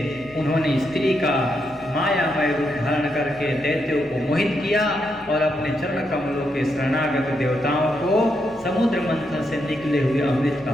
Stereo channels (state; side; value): normal; both; correlation 0.81